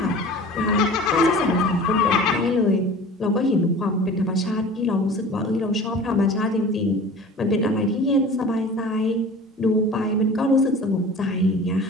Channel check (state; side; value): normal; both; correlation 0.40